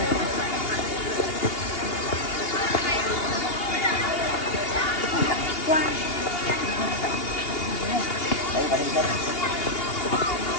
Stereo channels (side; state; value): right; late; 2.8 ms